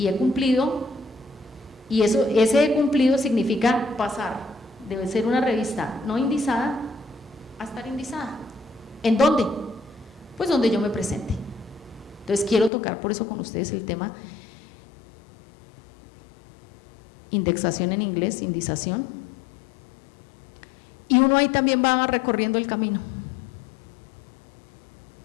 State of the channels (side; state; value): right; drops out; at 12.7 s